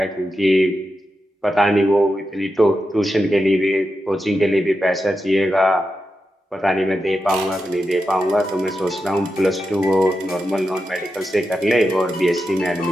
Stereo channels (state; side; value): normal; both; correlation 0.88